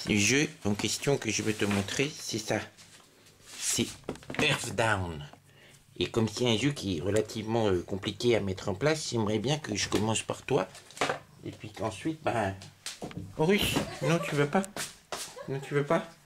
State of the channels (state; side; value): identical; both; correlation 1.00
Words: Le jeu en question que je veux te montrer, c'est ça. C'est Earthbound. Et comme c'est un jeu qui est relativement compliqué à mettre en place, j'aimerais bien que je commence par toi. Et puis qu'ensuite, ben... Russe, non, tu veux pas? Non, tu veux pas?